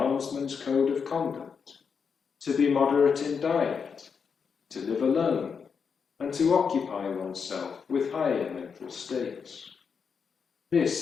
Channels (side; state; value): right; quieter; 6.1 dB